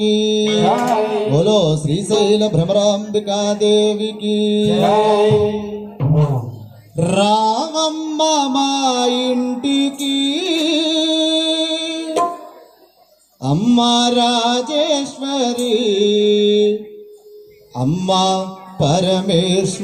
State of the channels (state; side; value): identical; both; correlation 1.00